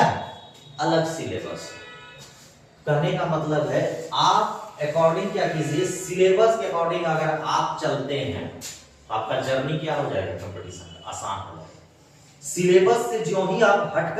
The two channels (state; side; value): identical; both; correlation 1.00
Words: अलग सिलेबस। कहने का मतलब है आप अकॉर्डिंग क्या कीजिए, सिलेबस के अकॉर्डिंग अगर आप चलते हैं आपका जर्नी क्या हो जाएगा, कंपटीशन आसान हो जाएगा। सिलेबस से जो ही आप हट